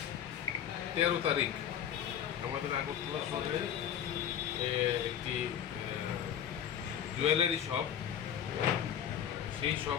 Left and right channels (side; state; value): right; quieter; 9.5 dB